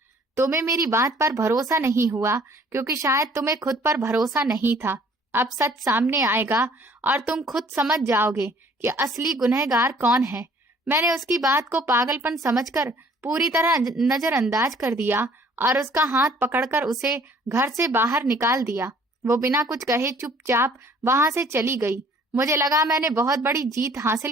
तुम्हें मेरी बात पर भरोसा नहीं हुआ क्योंकि शायद तुम्हें खुद पर भरोसा नहीं था। अब सच सामने आएगा और तुम खुद समझ जाओगे कि असली गुनहगार कौन है। मैंने उसकी बात को पागलपन समझकर पूरी तरह नजरअंदाज कर दिया और उसका हाथ पकड़कर उसे घर से बाहर निकाल दिया। वो बिना कुछ कहे चुपचाप वहां से चली गई। मुझे लगा मैंने बहुत बड़ी जीत हासिल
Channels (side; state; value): both; normal; correlation 0.57